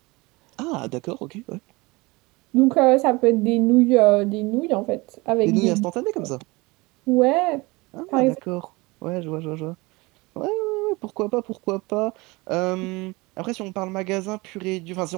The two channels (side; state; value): left; quieter; 23.9 dB